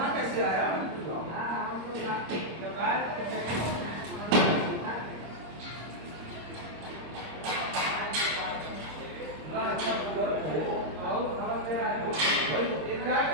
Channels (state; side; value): late; left; 26 ms